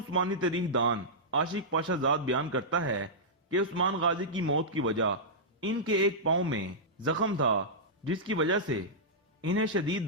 تاریخ دان عاشق پاشا زاد بیان کرتا ہے کہ عثمان غازی کی موت کی وجہ ان کے ایک پاؤں میں زخم تھا، جس کی وجہ سے انہیں شدید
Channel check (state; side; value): normal; both; correlation -0.12